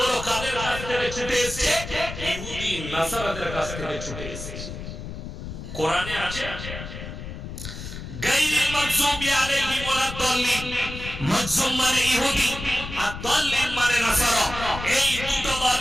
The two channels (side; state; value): left; noise; rumble, 9 dB below the sound